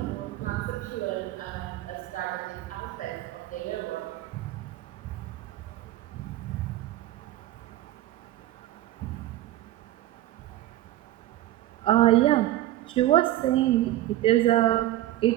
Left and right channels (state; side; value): quieter; left; 15.0 dB